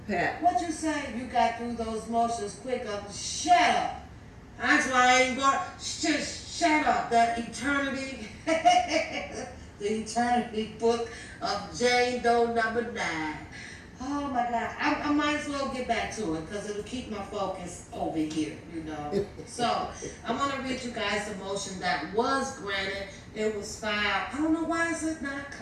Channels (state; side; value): identical; both; correlation 1.00